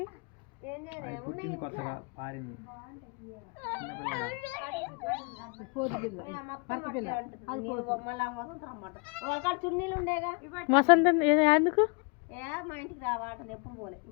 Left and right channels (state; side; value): quieter; right; 31.7 dB